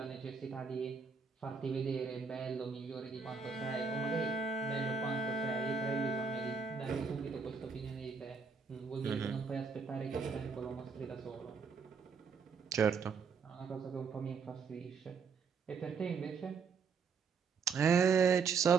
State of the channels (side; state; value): left; quieter; 5.4 dB